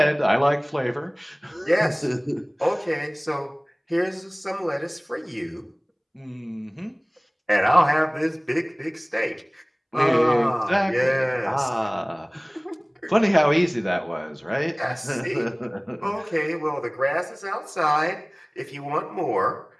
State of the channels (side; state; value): both; identical; correlation 1.00